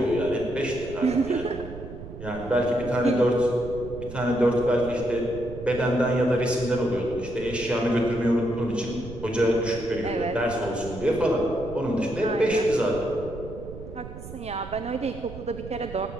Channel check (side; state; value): right; noise; rumble, 12 dB below the sound